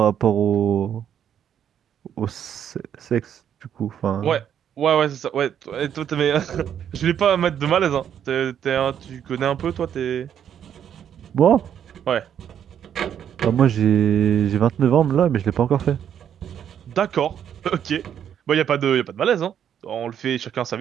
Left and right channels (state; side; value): quieter; left; 9.2 dB